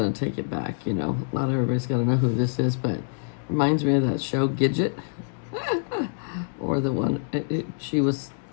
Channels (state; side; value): silent; right; digital silence